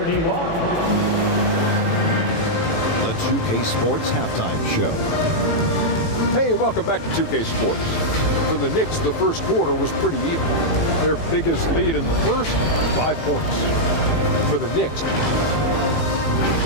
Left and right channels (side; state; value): right; late; 18 ms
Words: The 2K Sports Halftime Show. Hey, welcome back to 2K Sports. For the Knicks, the first quarter was pretty even. Their biggest lead in the first, 5 points for the Knicks.